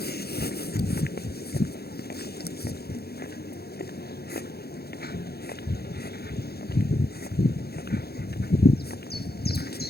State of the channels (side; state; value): right; late; 0.46 ms